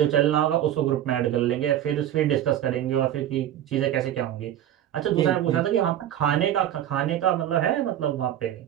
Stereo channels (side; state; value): left; quieter; 11.5 dB